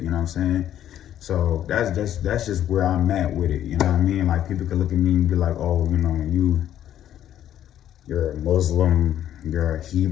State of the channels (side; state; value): right; quieter; 11.2 dB